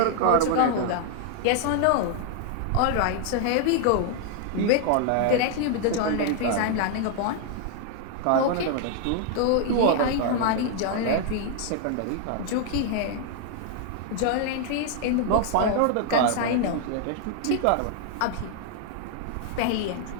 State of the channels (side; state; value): both; different; correlation 0.00